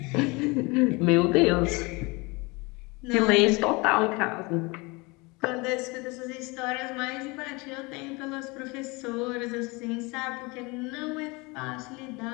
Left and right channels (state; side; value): quieter; right; 26.1 dB